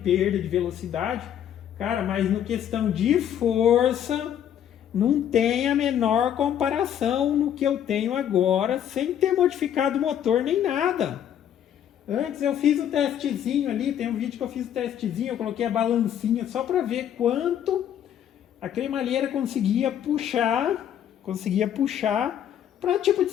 de velocidade. Cara, mas no questão de força, não tem a menor comparação no que eu tenho agora, sem ter modificado o motor nem nada. Antes eu fiz o testezinho ali, tem um vídeo que eu fiz o testezinho, eu coloquei a balancinha só para ver quanto a cremalheira conseguia puxar para tipo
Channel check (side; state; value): right; quieter; 9.9 dB